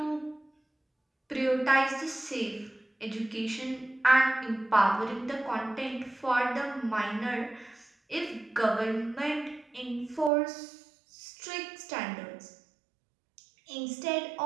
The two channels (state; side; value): drops out; left; at 10.3 s